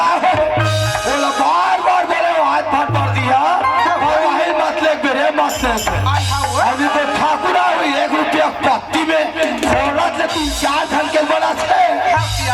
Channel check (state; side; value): identical; both; correlation 1.00